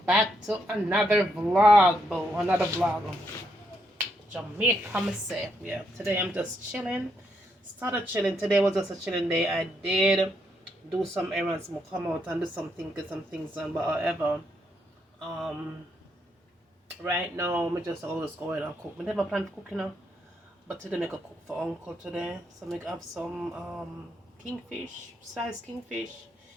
to another vlog, boo. Another vlog. Jamaica, I'ma say. Yeah, today I'm just chilling. Started chilling. Today was just a chilling day. I did do some errands. I'ma come out and do something, get some things done. But however, um, right now, I'm just always going and cook. I never plan to cook, you know. But today, make a cook for uncle today. So, make have some kingfish, sliced kingfish.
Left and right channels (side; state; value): both; normal; correlation 0.77